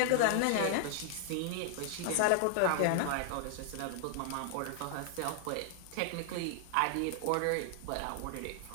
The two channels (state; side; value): different; both; correlation 0.00